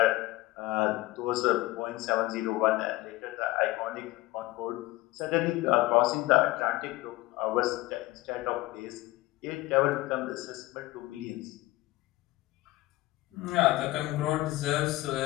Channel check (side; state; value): right; quieter; 18.9 dB